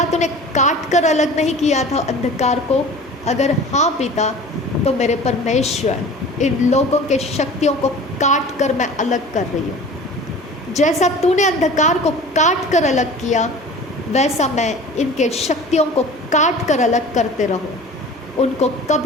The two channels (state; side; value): normal; both; correlation 0.40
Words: तूने काट कर अलग नहीं किया था अंधकार को? अगर हाँ पिता, तो मेरे परमेश्वर इन लोगों के शक्तियों को काट कर मैं अलग कर रही हूँ। जैसा तूने अंधकार को काट कर अलग किया, वैसा मैं इनके शक्तियों को काट कर अलग करते रहूँ। उनको